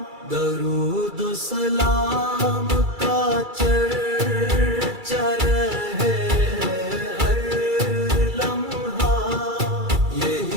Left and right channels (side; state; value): left; late; 2.3 ms